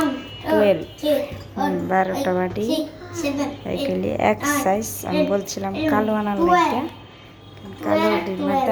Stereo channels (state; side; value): identical; both; correlation 1.00